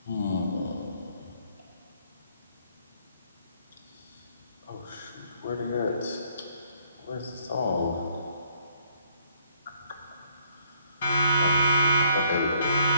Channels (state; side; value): inverted; both; correlation -0.66